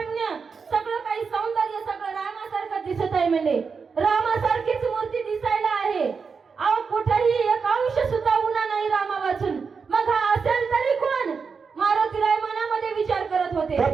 सगळं काही सौंदर्य सगळं रामासारखं दिसत आहे. म्हणजे रामासारखीच मूर्ती दिसायला आहे. अहो कुठेही एक अंश सुद्धा उन्हा नाही रामा वाचून. मग हा असेल तरी कोण? मारुतीराय मनामध्ये विचार करत होते.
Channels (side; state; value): left; quieter; 5.4 dB